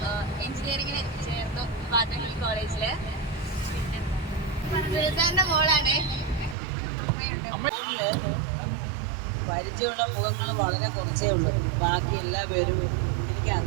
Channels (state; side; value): drops out; left; at 6.6 s